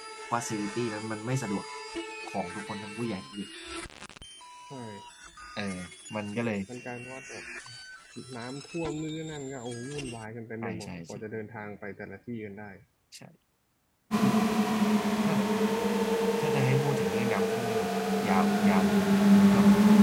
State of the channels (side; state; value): both; identical; correlation 1.00